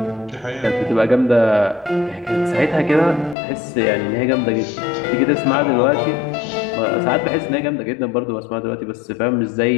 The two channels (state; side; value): drops out; right; at 3.4 s